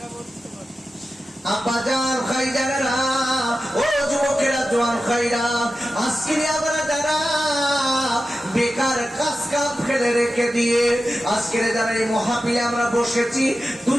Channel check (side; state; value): both; normal; correlation 0.93